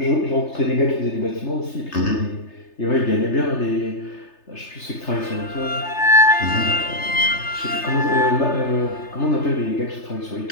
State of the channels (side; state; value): right; late; 3.3 ms